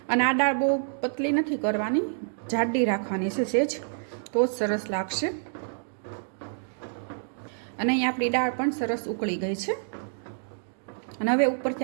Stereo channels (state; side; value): silent; left; digital silence